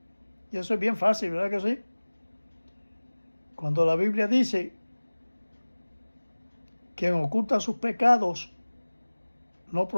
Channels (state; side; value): inverted; both; correlation -1.00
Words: y eso es bien fácil, ¿verdad que sí? Cuando la Biblia dice: quien oculta sus pecados no